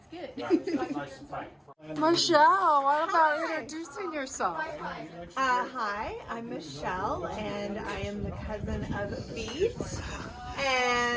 good. Michelle, what about introducing yourself? Hi, I'm Michelle, and I am the cousin of Vito.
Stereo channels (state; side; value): identical; both; correlation 1.00